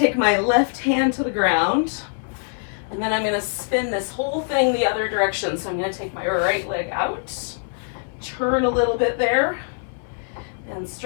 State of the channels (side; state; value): right; silent; 63 dB below the other